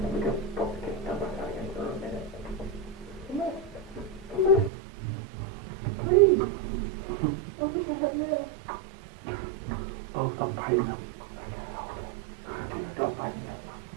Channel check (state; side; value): drops out; left; at 4.7 s